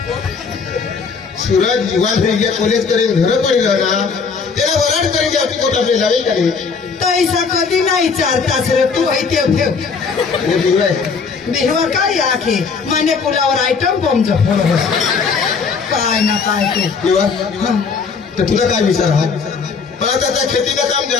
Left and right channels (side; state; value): right; quieter; 5.3 dB